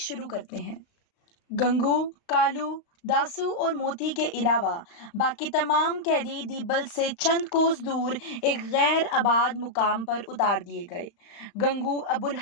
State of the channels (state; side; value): late; right; 35 ms